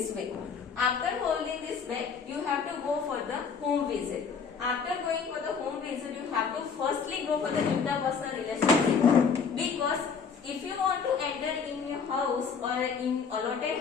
way. After holding this bag, you have to go for the home visit. After going for the home visit, you have to firstly go for the interpersonal relationship, because if you want to enter in your house or in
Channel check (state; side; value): quieter; right; 5.9 dB